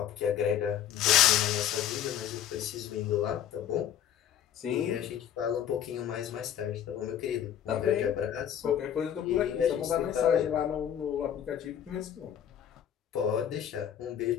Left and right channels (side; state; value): right; quieter; 10.0 dB